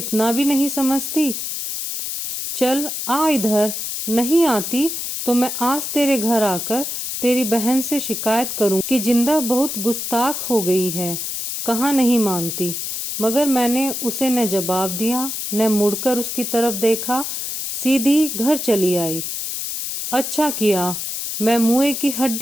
भी नहीं समझती? चल आ इधर। नहीं आती तो मैं आज तेरे घर आकर तेरी बहन से शिकायत करूं कि जिंदा बहुत गुस्ताख हो गई है। कहाँ नहीं मानती। मगर मैंने उसे न जवाब दिया न मुड़कर उसकी तरफ देखा, सीधी घर चली आई। अच्छा किया, मैं मुए की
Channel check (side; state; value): left; noise; hiss, 4 dB below the sound